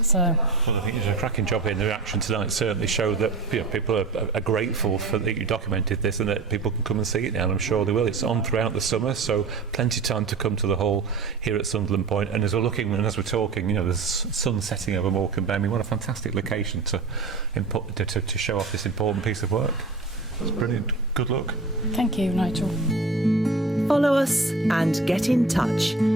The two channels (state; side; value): quieter; left; 3.9 dB